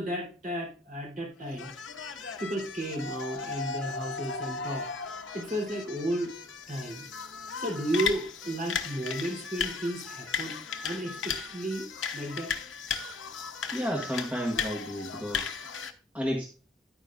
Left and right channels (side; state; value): both; normal; correlation 0.57